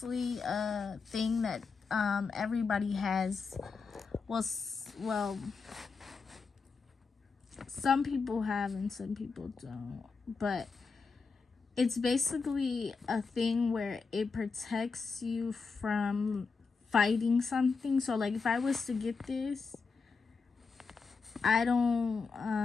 a thing that everybody has. Well, some people have and some people don't. But it's basically a thing where it protects you from fighting something. So, like, if I was to get this, I don't,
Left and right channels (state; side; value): quieter; right; 4.8 dB